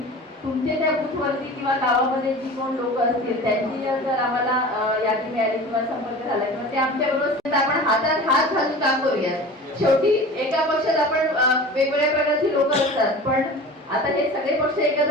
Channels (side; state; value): both; normal; correlation 0.37